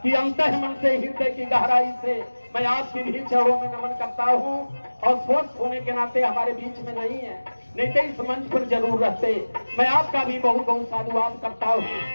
कि अंतः मन से, हृदय की गहराई से मैं आपके भी चरणों में नमन करता हूं। और स्वस्थ होने के नाते हमारे बीच में नहीं है, नहीं तो इस मंच पर जरूर रहते। मैं आपका भी बहुत बहुत साधुवाद करता हूं।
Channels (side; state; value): both; inverted; correlation -1.00